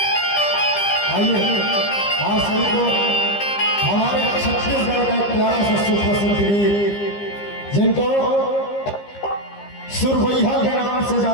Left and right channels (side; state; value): right; late; 15 ms